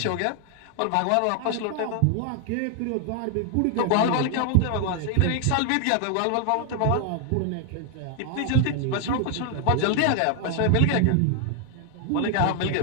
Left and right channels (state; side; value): different; both; correlation 0.00